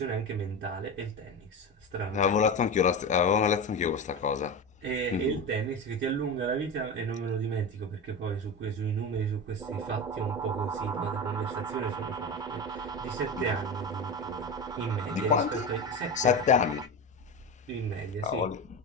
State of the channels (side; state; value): both; normal; correlation 0.23